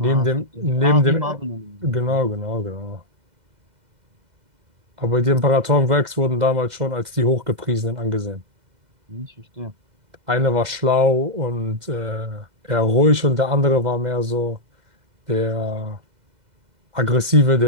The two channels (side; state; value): left; late; 2.0 ms